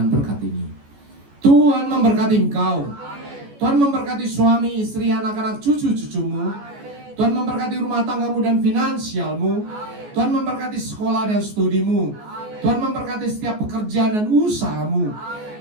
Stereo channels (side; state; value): left; late; 14 ms